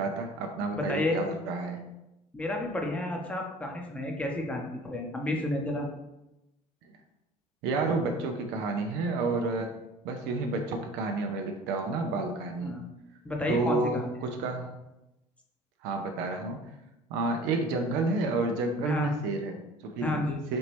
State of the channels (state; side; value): normal; both; correlation 0.46